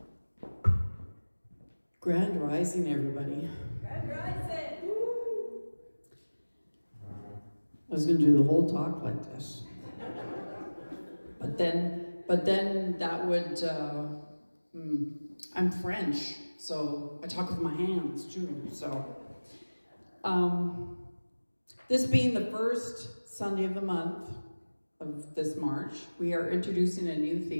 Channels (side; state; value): both; inverted; correlation -1.00